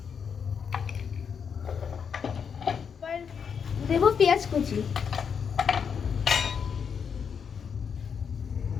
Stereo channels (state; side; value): quieter; right; 6.8 dB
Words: এবার দেবো পেঁয়াজ কুচি,